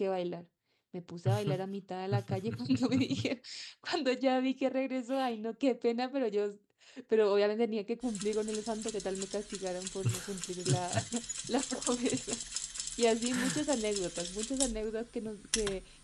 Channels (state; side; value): identical; both; correlation 1.00